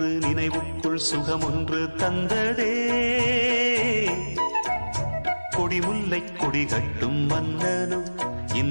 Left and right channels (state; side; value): inverted; both; correlation -1.00